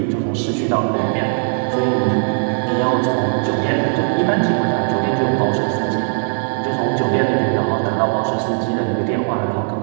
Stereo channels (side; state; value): left; silent; 57 dB below the other